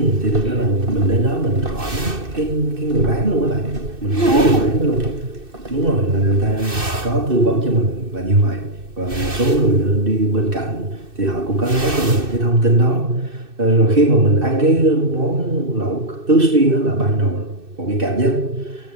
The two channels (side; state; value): left; late; 2.6 ms